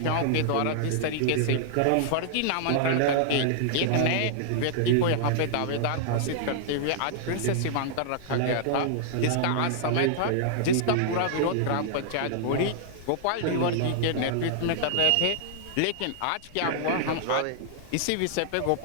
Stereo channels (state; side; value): different; both; correlation -0.01